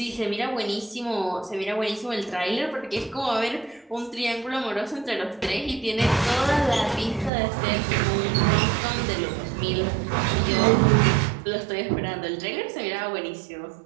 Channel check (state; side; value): drops out; left; at 7.3 s